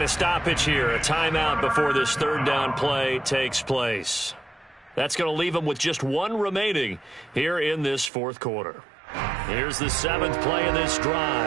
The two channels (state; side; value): drops out; left; at 8.1 s